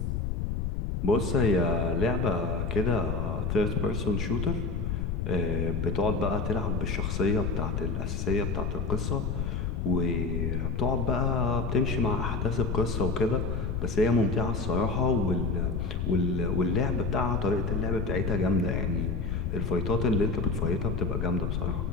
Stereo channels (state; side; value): noise; left; rumble, 1 dB below the sound